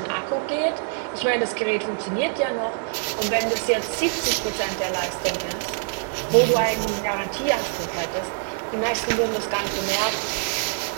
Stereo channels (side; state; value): left; silent; digital silence